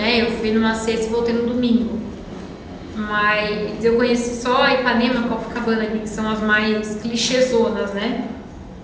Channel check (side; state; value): both; identical; correlation 1.00